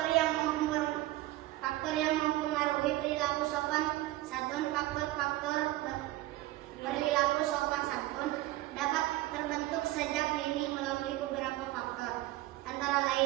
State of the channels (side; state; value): left; quieter; 17.0 dB